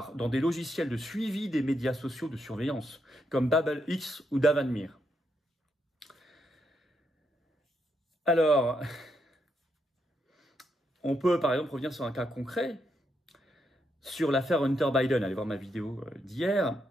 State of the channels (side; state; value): both; normal; correlation 0.79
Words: dans des logiciels de suivi des médias sociaux de surveillance, comme BabelX ou Davanmir. Alors, on peut par exemple revenir sur un cas concret, sur l'affaire Hunter Biden. Allez voir ma vidéo d'hier,